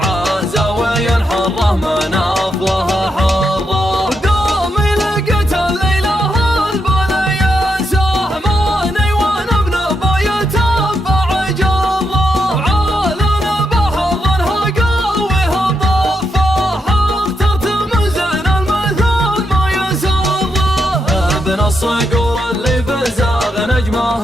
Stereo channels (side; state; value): both; normal; correlation 0.82